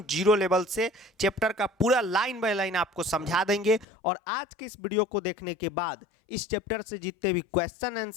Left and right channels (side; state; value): right; drops out; at 3.9 s